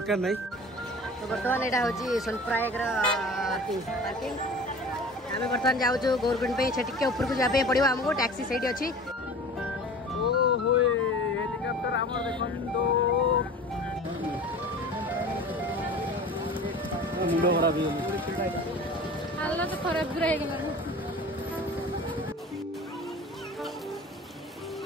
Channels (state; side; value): normal; both; correlation 0.40